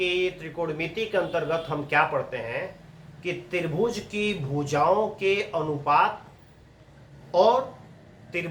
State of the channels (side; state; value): both; identical; correlation 1.00